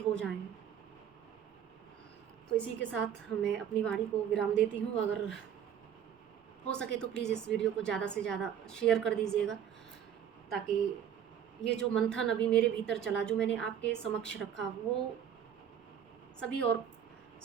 हो जाएं। तो इसी के साथ मैं अपनी वाणी को विराम देती हूँ। अगर हो सके तो प्लीज़ इस वीडियो को ज़्यादा से ज़्यादा शेयर कर दीजिएगा, ताकि ये जो मंथन अभी मेरे भीतर चला, जो मैंने आपके समक्ष रखा, वो सभी और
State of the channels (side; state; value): left; quieter; 9.1 dB